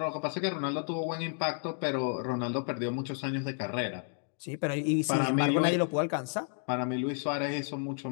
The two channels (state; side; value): silent; right; 57 dB below the other